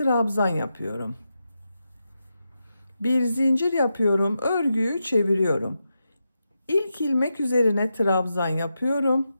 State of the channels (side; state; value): both; inverted; correlation -0.88